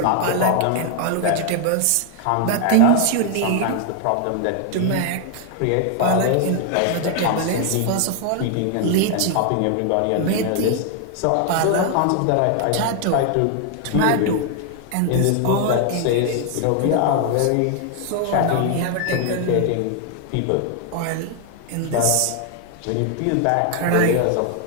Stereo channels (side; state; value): both; different; correlation 0.00